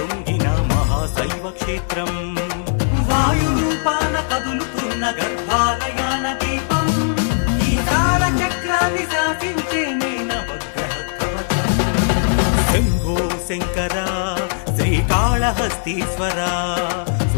మహాశైవ క్షేత్రం వాయురూపాన కదులుతున్న గర్భాలయాన దీపం ఈ కాల చక్రాన్ని శాసించే నవగ్రహ కవచం శంభో శంకర శ్రీకాళహస్తీశ్వర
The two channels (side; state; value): right; silent; digital silence